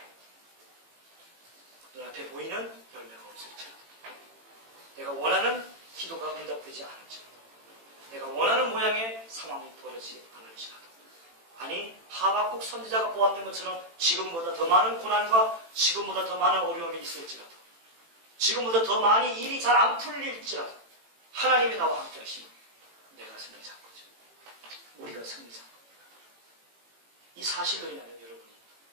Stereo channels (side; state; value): left; late; 18 ms